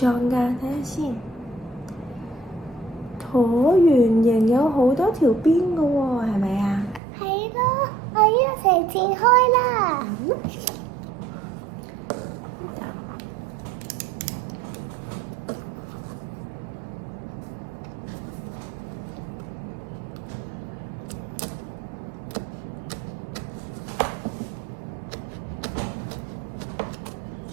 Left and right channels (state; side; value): drops out; left; at 7.0 s